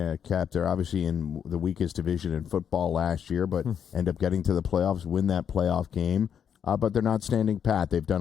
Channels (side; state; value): right; quieter; 8.2 dB